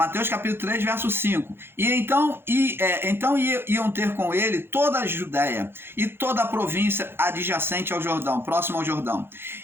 capítulo 3, verso 5. Então iam ter com ele toda a Judéia e toda a província adjacente ao Jordão, próximo ao Jordão.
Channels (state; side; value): late; left; 0.11 ms